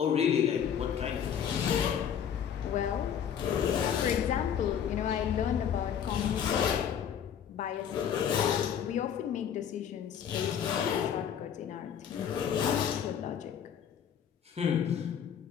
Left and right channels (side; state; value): right; quieter; 8.5 dB